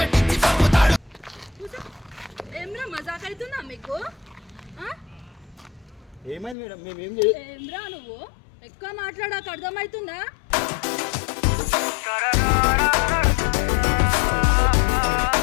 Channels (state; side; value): drops out; right; at 6.6 s